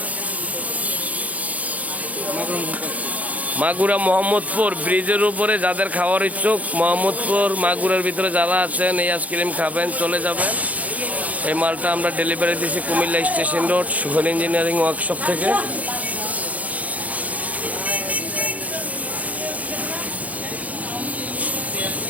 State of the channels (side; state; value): left; late; 0.072 ms